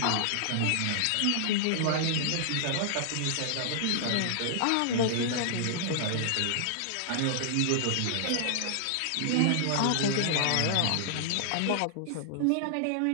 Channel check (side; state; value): both; different; correlation -0.01